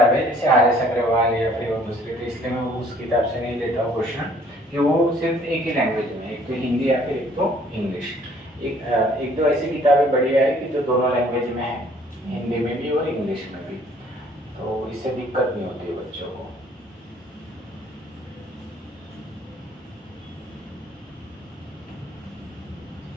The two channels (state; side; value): normal; both; correlation 0.59